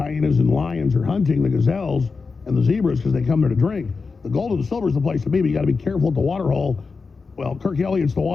and lions are hunting the gazelles and the zebras, because they come there to drink. The gold and the silver is the place to be, but you got to be careful at the water hole. Well, Kirk Elliott's the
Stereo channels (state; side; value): quieter; right; 4.6 dB